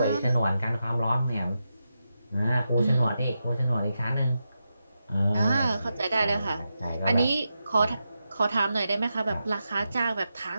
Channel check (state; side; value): inverted; both; correlation -0.88